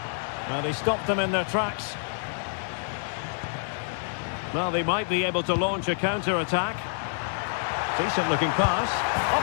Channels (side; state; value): right; silent; digital silence